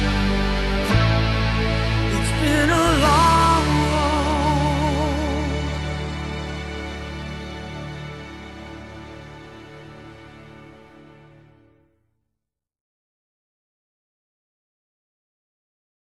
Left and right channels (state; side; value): identical; both; correlation 1.00